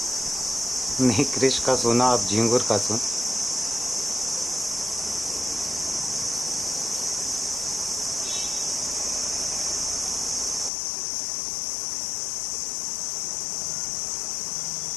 नहीं, क्रिश का सुना, अब झिंगुर का सुन।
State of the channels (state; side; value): drops out; right; at 10.7 s